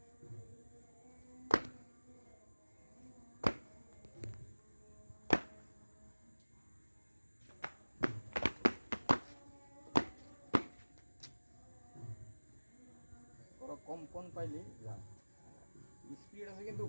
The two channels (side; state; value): both; inverted; correlation -1.00